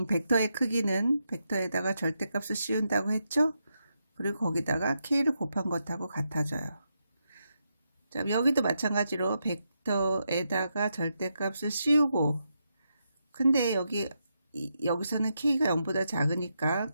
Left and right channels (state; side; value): inverted; both; correlation -0.83